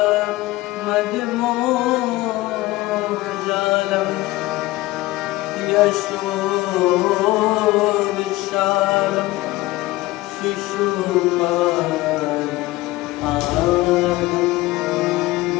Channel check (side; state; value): right; quieter; 18.8 dB